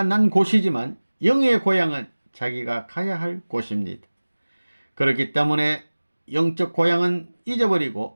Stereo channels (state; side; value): inverted; both; correlation -1.00